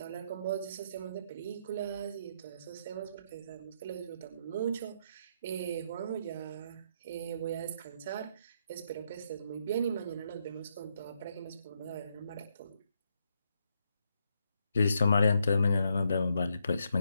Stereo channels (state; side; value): inverted; both; correlation -0.77